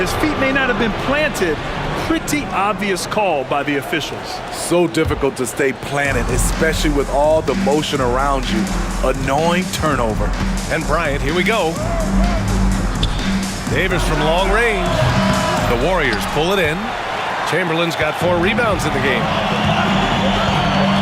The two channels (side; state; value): both; identical; correlation 1.00